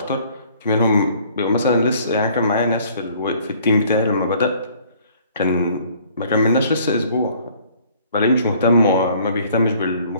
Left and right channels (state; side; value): inverted; both; correlation -0.58